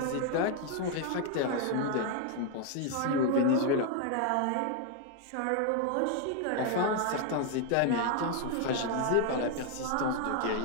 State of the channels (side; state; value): both; different; correlation 0.00